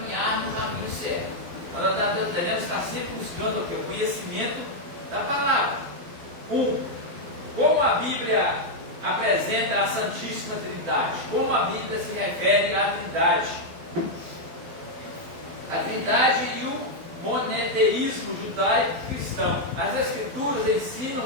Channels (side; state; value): left; late; 12 ms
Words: no caminho certo. Nós devemos estar sempre buscando o quê? O conhecimento da palavra. Como a Bíblia apresenta a Santíssima Trindade? Como a Bíblia se refere à Trindade? A Trindade e o monoteísmo judaico-cristão. As Escrituras ensinam